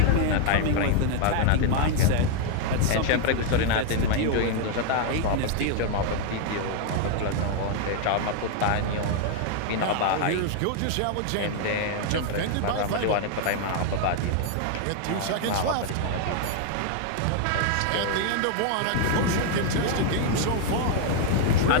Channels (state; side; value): different; both; correlation 0.00